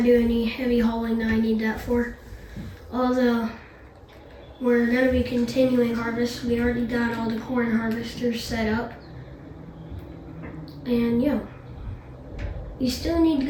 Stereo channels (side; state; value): both; identical; correlation 1.00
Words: any heavy hauling that I need that for. Although we're gonna be continuing harvest. We already got all the corn harvesters set up. And yeah, we still need to